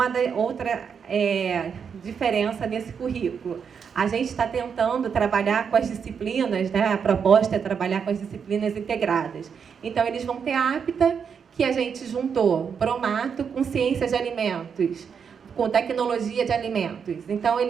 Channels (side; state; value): left; quieter; 6.7 dB